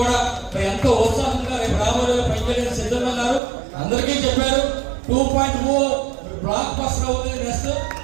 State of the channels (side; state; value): left; drops out; at 3.4 s